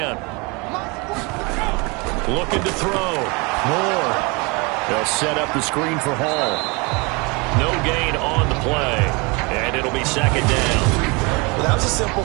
Looking to throw. Moore. They'll set up the screen for Hall. No gain on the play. And it'll be 2nd down. Well, that was a simple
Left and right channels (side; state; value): left; quieter; 28.1 dB